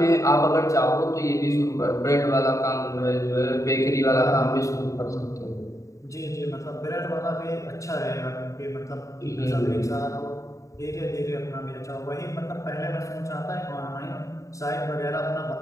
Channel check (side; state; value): right; late; 0.16 ms